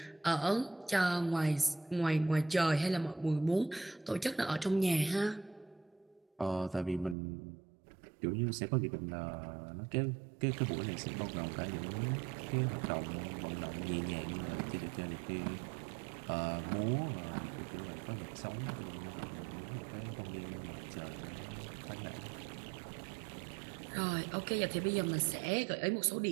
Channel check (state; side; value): drops out; left; at 7.2 s